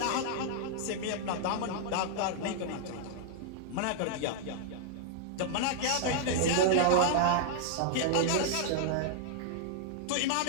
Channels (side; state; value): both; different; correlation -0.01